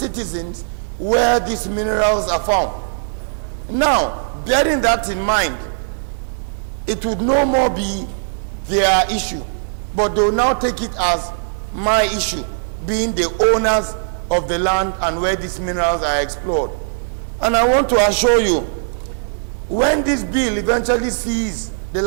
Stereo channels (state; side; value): silent; left; 67 dB below the other